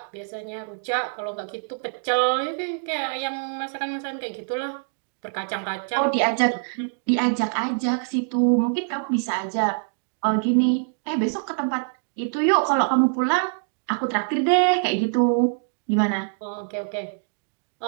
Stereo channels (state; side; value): silent; left; digital silence